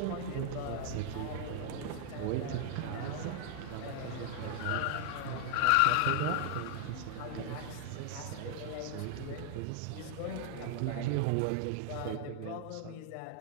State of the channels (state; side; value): different; both; correlation 0.00